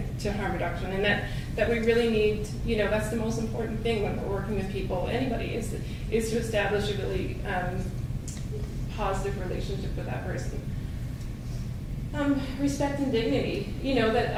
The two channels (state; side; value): identical; both; correlation 1.00